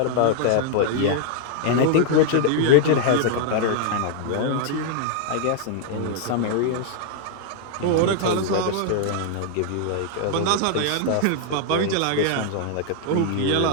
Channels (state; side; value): different; both; correlation 0.00